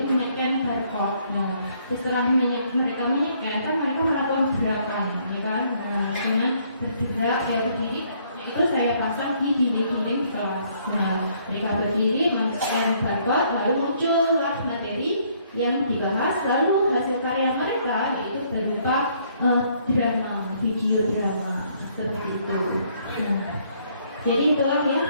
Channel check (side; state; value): both; inverted; correlation -0.66